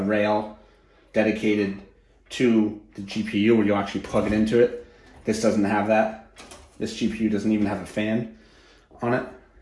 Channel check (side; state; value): both; identical; correlation 1.00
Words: rail dedicated to the GPU where you'll actually plug it into it. This doesn't have that. This GPU doesn't even have a fan on it.